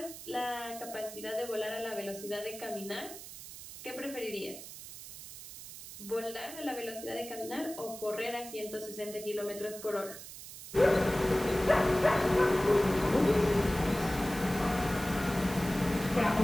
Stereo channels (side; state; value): right; noise; hiss, 13 dB below the sound